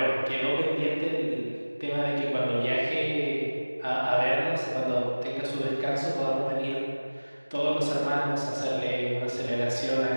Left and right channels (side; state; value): both; inverted; correlation -1.00